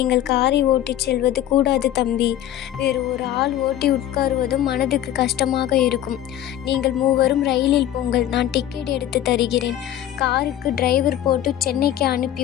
காரை ஓட்டிச் செல்வது கூடாது தம்பி. வேறு ஒரு ஆள் ஓட்டி உட்காருவதும் மனதுக்கு கஷ்டமாக இருக்கும். நீங்கள் மூவரும் ரயிலில் போங்கள், நான் டிக்கெட் எடுத்து தருகிறேன். காருக்கு டிரைவர் போட்டு சென்னைக்கு அனுப்பி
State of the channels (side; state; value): right; quieter; 12.0 dB